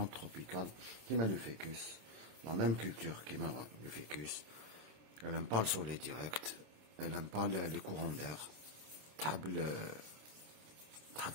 تروبيكال كيما لو فيكوس، لا ميم كولتور كيما لو فيكوس. Elle aime pas le soleil direct, elle aime pas les courants d'air. تحب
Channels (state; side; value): late; left; 26 ms